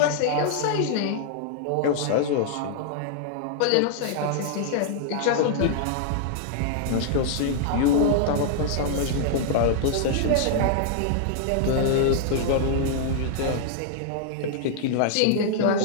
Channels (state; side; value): different; both; correlation -0.01